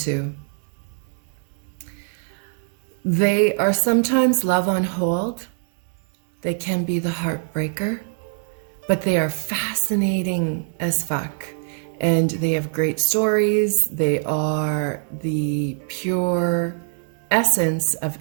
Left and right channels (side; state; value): left; silent; 62 dB below the other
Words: They are sometimes love on hold. They can be the heartbreaker, but they are fascinating as fuck. And they have great stories. They are the pure essence of